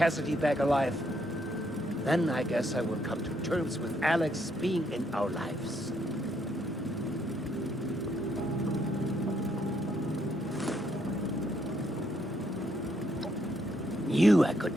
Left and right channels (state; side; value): normal; both; correlation 0.73